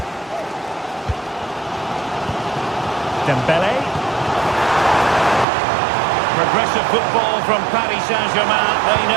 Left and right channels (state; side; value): drops out; left; at 5.5 s